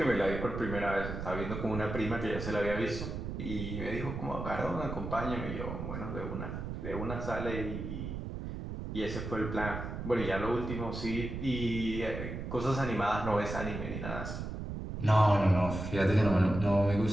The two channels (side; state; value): right; noise; rumble, 6 dB below the sound